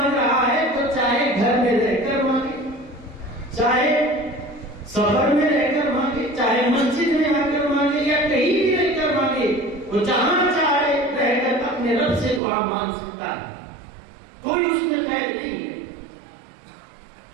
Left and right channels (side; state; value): left; drops out; at 12.4 s